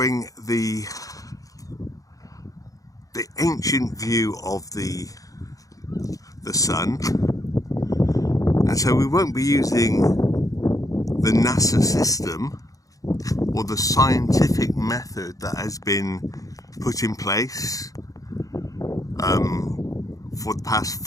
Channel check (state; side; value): late; right; 0.17 ms